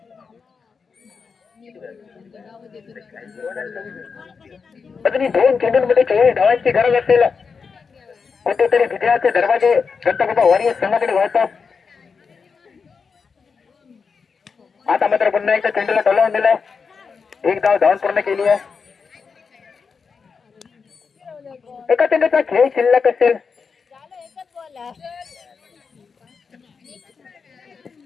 अजूनही 2 चेंडूंमध्ये 24 धावांची गरज असेल. कुठेतरी विजयाचे दरवाजे दत्तगोपा वॉरियर्स संघाकडे वळतात. आता मात्र पुन्हा एकदा चेंडूला टोलावून दिलाय. 1 धाव धावून पूर्ण केली आहे. एका चेंडूचा खेळ शिल्लक असेल.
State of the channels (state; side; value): quieter; right; 5.4 dB